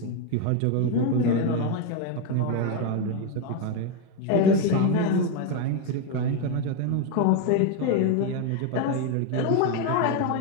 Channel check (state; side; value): different; both; correlation 0.02